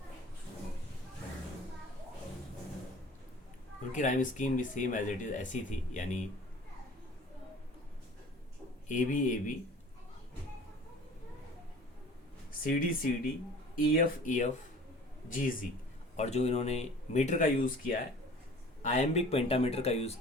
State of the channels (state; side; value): normal; both; correlation 0.45